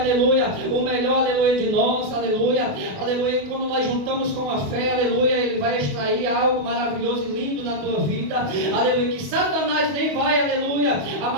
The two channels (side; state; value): left; late; 28 ms